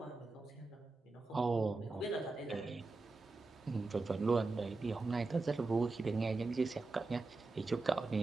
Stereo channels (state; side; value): quieter; left; 3.6 dB